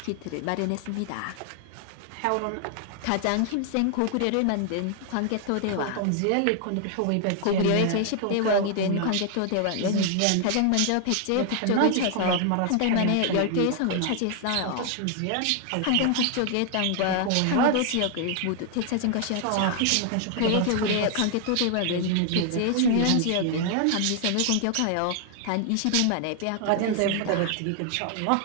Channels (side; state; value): both; different; correlation 0.00